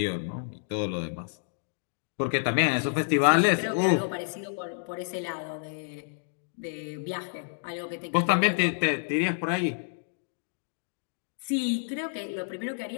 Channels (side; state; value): right; silent; digital silence